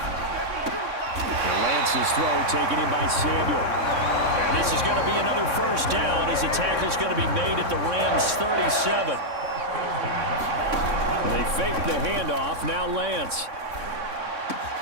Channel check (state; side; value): late; left; 3.6 ms